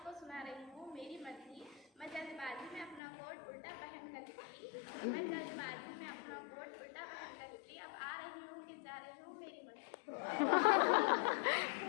को सुना रही हूँ मेरी मर्जी। मैं जल्दबाजी में अपना कोट उल्टा पहन कर निकली, मैं जल्दबाजी में अपना कोट उल्टा पहन कर निकली, अब आ रही हूँ कि जा रही हूँ मेरी मर्जी।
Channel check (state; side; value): drops out; right; at 3.0 s